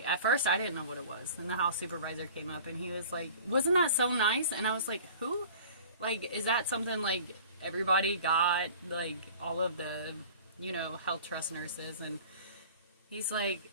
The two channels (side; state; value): both; inverted; correlation -0.44